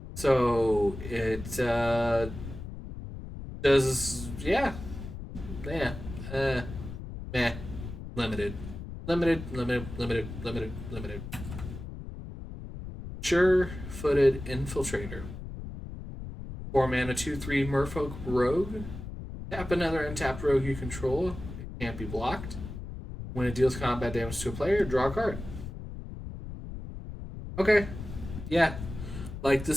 So it does, yeah. Meh. Limited. Sure-footed Infiltrator. 4 mana, 2/3 Merfolk Rogue. Tap another untapped rogue you control. It can't be blocked. When it deals combat damage to a player, draw a card. Okay. Yeah. Like,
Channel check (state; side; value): noise; left; rumble, 10 dB below the sound